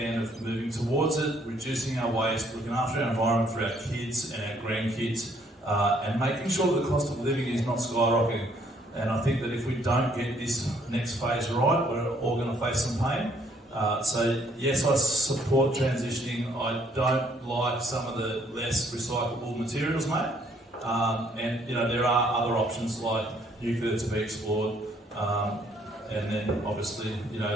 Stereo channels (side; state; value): both; normal; correlation 0.66